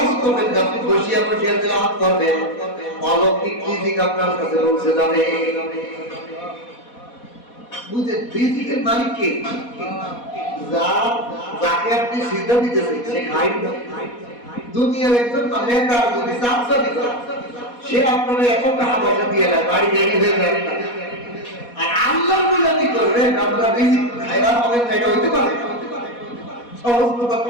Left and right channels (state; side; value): late; right; 4.1 ms